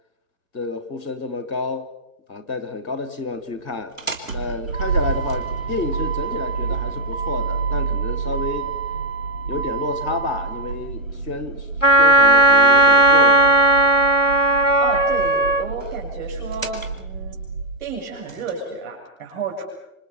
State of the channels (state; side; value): late; right; 1.1 ms